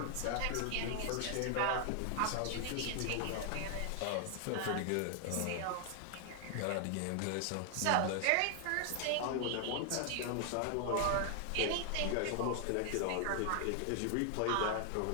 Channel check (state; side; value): different; both; correlation 0.00